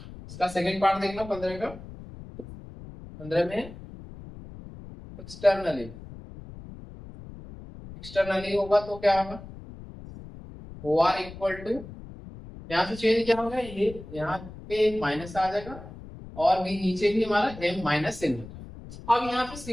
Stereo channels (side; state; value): left; noise; rumble, 15 dB below the sound